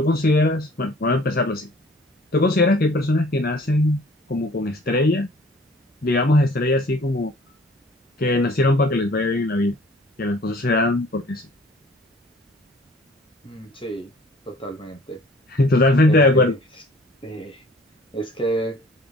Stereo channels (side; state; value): both; normal; correlation 0.52